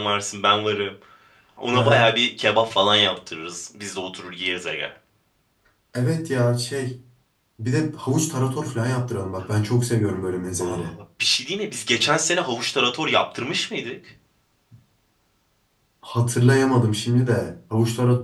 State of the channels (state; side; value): identical; both; correlation 1.00